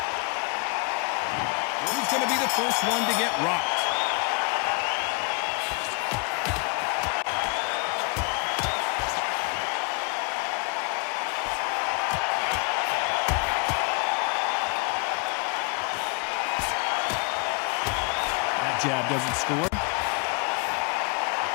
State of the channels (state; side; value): quieter; right; 32.7 dB